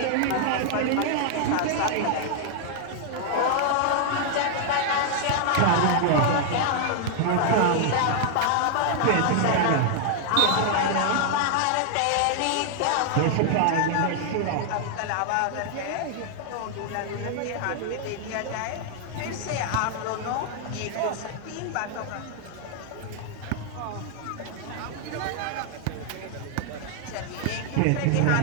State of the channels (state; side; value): different; both; correlation 0.00